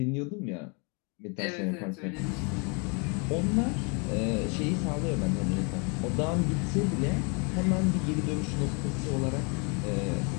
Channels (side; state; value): right; quieter; 33.9 dB